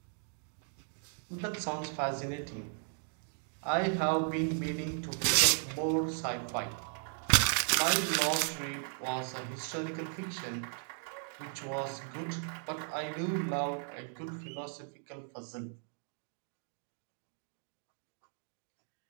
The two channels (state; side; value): silent; left; 54 dB below the other